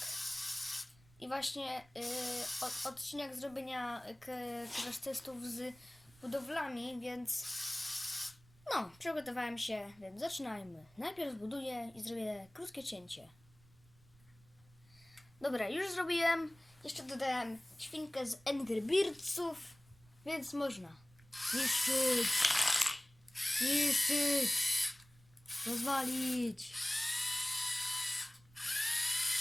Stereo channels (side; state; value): right; noise; rumble, 28 dB below the sound